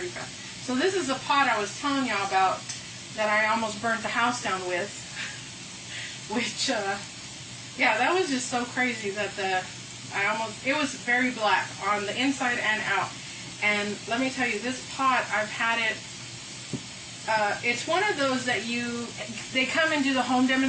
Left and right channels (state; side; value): identical; both; correlation 1.00